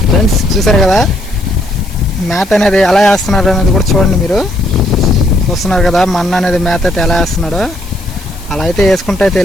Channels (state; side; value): noise; left; hiss, 20 dB below the sound